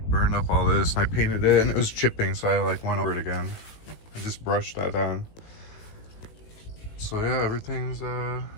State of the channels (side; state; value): right; late; 18 ms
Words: burned up all this, and I painted it and it was chipping, so I like went over it again. I just brushed that on. So yeah, everything's